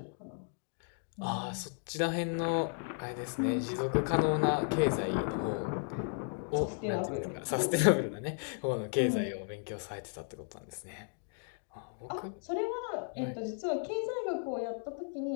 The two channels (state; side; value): silent; right; 55 dB below the other